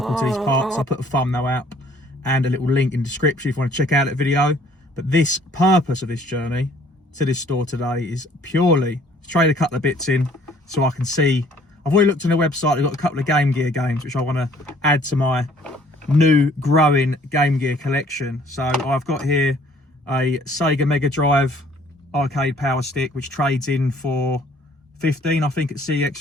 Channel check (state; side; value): normal; both; correlation 0.58